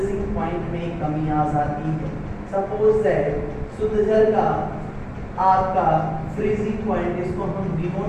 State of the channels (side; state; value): both; identical; correlation 1.00